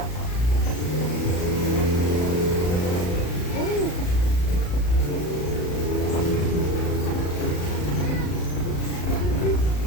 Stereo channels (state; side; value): late; right; 34 ms